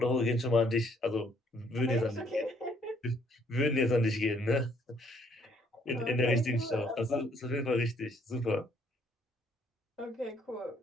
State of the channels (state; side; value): normal; both; correlation 0.66